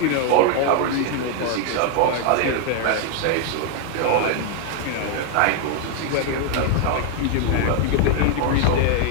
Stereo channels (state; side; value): different; both; correlation 0.00